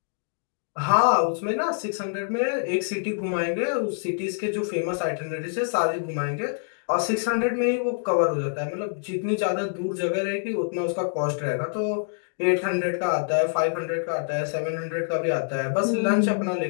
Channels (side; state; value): right; silent; digital silence